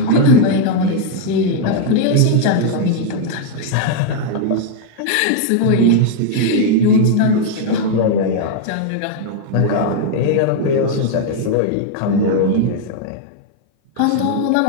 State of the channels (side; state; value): both; different; correlation 0.00